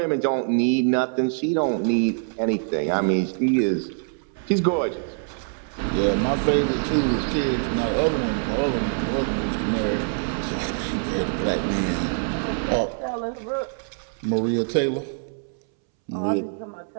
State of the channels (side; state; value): left; silent; 62 dB below the other